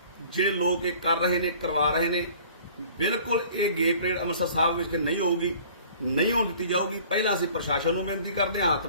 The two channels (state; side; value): inverted; both; correlation -0.50